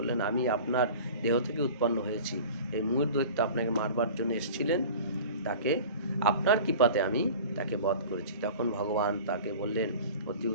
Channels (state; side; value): inverted; both; correlation -0.40